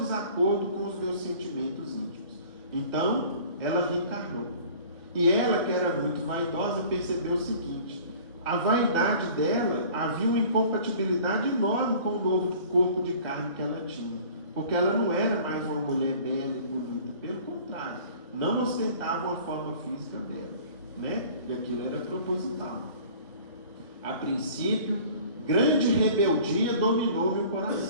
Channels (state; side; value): inverted; both; correlation -0.47